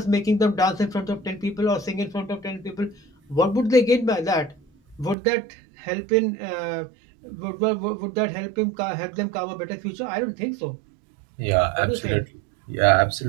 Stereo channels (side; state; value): left; drops out; at 5.2 s